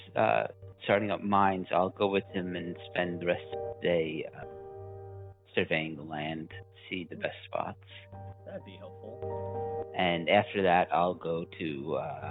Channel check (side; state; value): both; identical; correlation 1.00